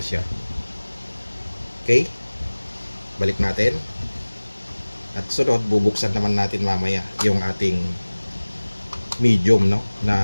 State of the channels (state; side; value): inverted; both; correlation -1.00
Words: siya. Okay? Balik natin. At sunod, bubuksan naman natin mamaya yung ating medium, no,